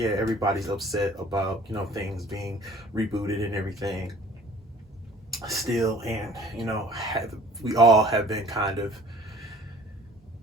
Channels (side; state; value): both; normal; correlation 0.49